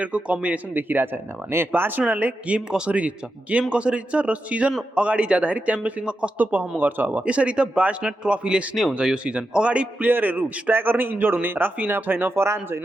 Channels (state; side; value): normal; both; correlation 0.88